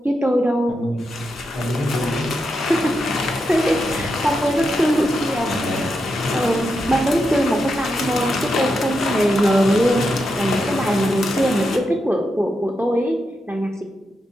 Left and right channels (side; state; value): both; normal; correlation 0.85